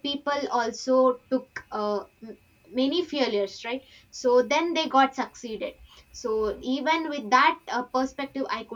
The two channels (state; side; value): identical; both; correlation 1.00